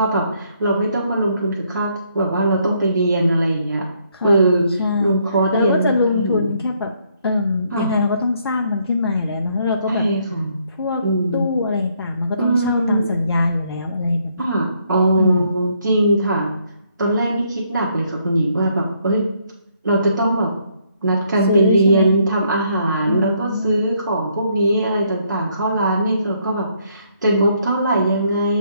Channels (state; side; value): inverted; both; correlation -0.70